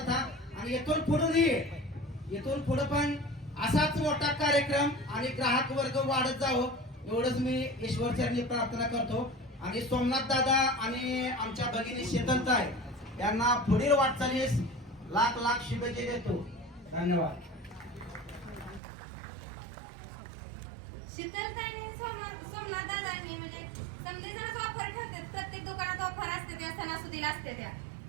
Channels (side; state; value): left; drops out; at 18.8 s